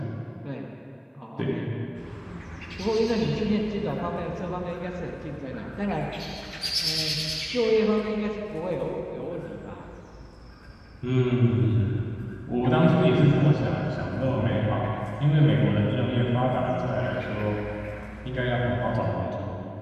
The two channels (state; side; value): identical; both; correlation 1.00